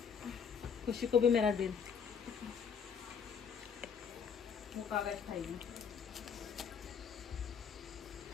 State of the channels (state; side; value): quieter; right; 6.8 dB